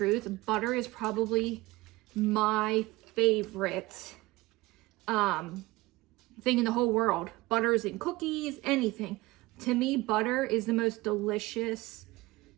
Butter is probably my favorite thing in the whole world. Butters and cookies, anything. To me, butter is the most delicious.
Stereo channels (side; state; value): left; quieter; 20.7 dB